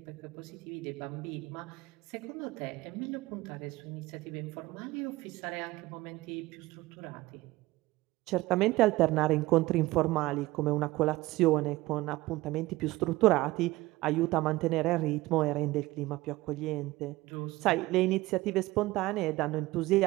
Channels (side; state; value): left; quieter; 19.0 dB